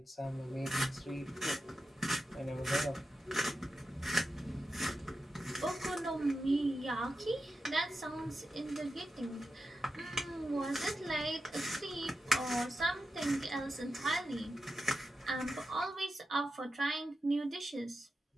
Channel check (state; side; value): normal; both; correlation 0.90